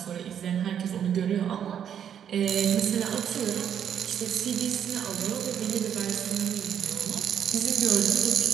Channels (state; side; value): quieter; left; 8.9 dB